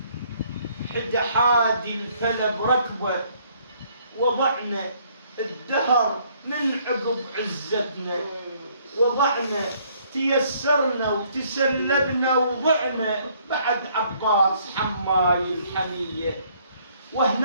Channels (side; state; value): both; inverted; correlation -0.64